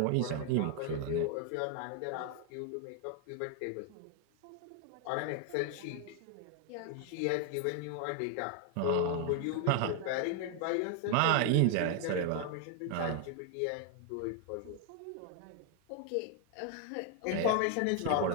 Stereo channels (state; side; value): different; both; correlation 0.00